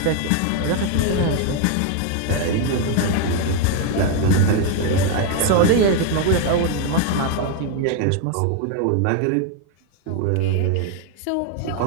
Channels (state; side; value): different; both; correlation 0.01